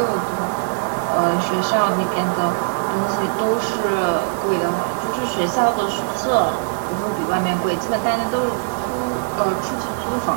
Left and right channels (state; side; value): silent; left; 62 dB below the other